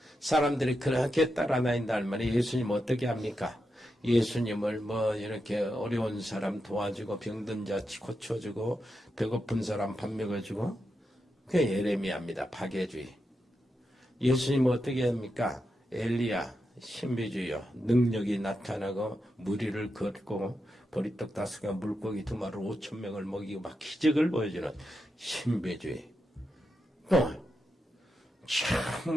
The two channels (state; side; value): normal; both; correlation 0.87